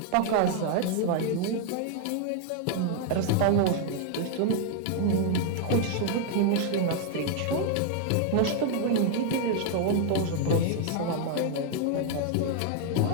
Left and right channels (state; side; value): different; both; correlation 0.00